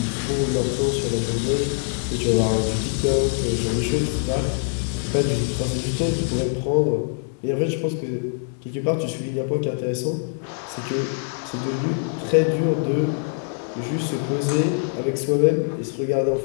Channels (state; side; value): silent; right; 62 dB below the other